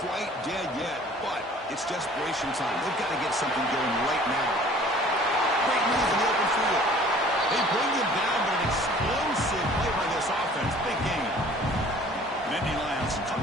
quite dead yet, but it's desperation time. They've got to get something going right now. Great move in the open field. They bring him down, but an explosive play by this offense. Big game. Nittany Lions come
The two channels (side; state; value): both; normal; correlation 0.51